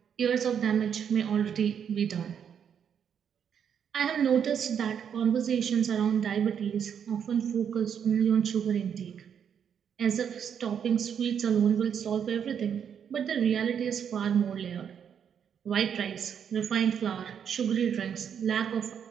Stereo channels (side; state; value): left; quieter; 8.0 dB